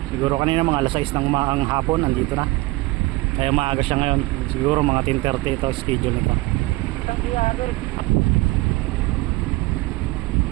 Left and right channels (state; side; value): quieter; left; 21.0 dB